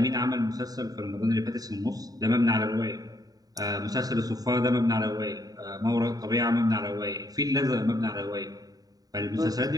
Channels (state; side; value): late; left; 0.18 ms